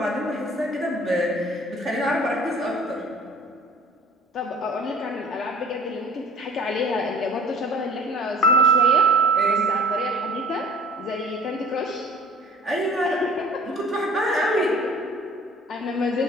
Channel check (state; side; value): normal; both; correlation 0.48